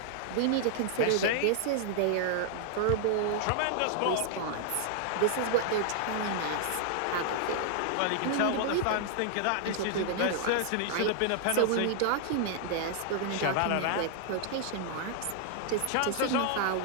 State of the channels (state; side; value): different; both; correlation 0.00